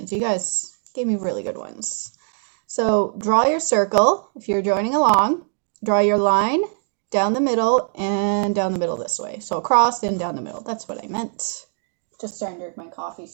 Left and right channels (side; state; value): left; silent; digital silence